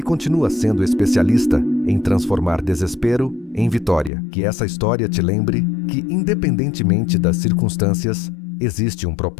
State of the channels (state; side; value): drops out; right; at 4.1 s